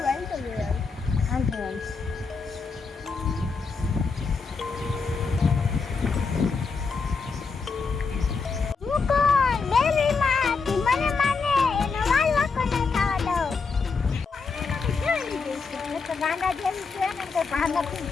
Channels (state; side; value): quieter; right; 4.8 dB